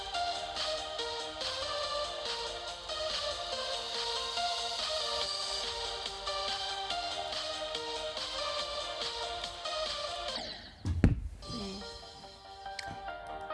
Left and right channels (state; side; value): identical; both; correlation 1.00